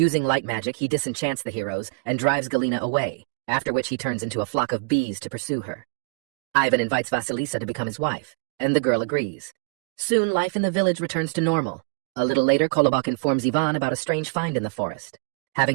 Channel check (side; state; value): left; quieter; 36.6 dB